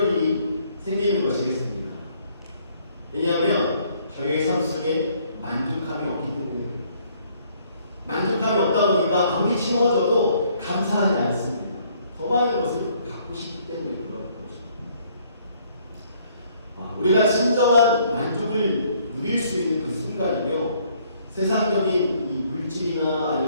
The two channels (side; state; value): both; inverted; correlation -0.64